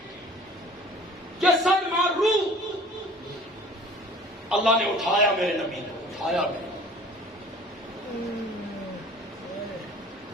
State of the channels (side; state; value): both; normal; correlation 0.48